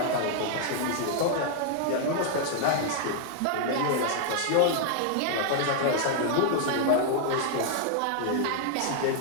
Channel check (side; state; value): both; different; correlation 0.00